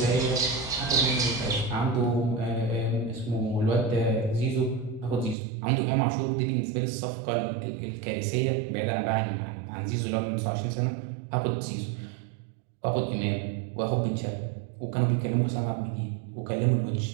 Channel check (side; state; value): left; drops out; at 5.4 s